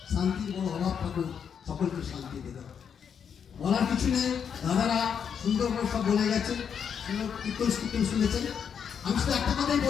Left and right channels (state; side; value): quieter; right; 7.4 dB